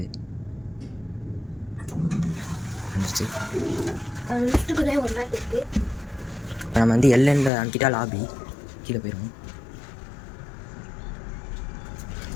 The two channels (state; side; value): drops out; right; at 7.5 s